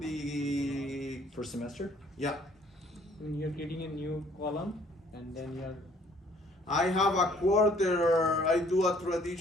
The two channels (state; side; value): normal; both; correlation 0.60